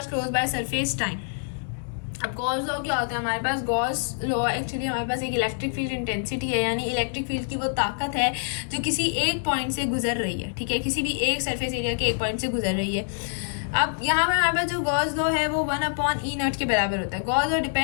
close by surface time। अब गॉस लॉ क्या होता है हमारे पास? गॉस लॉ एक्चुअली हमारे पास एक इलेक्ट्रिक फील्ड इंटेंसिटी है, यानी इलेक्ट्रिक फील्ड की वो ताकत है जो किसी एक पॉइंट से गुजर रही है। ठीक है, किसी भी एक सरफेस एरिया के एक पॉइंट से गुजर रही है। अब यहाँ पर हमारे पास जो गॉस लॉ है वो 1/E0 के बराबर होता है। गॉस लॉ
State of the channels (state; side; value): silent; right; digital silence